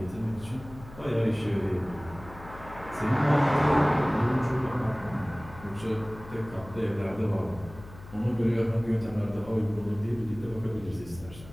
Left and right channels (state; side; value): noise; left; hum, 17 dB below the sound